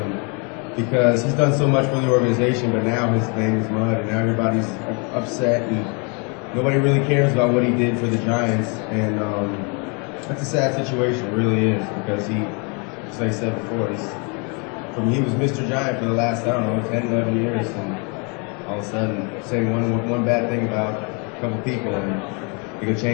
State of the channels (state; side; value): quieter; right; 34.3 dB